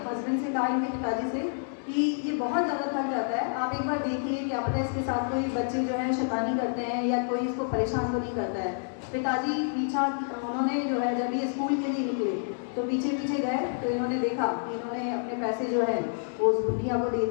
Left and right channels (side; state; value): right; silent; digital silence